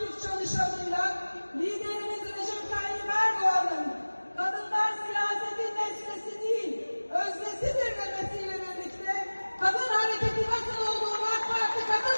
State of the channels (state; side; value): inverted; both; correlation -1.00